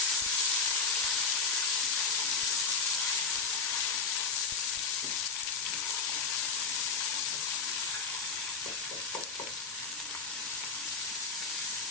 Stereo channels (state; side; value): quieter; right; 4.7 dB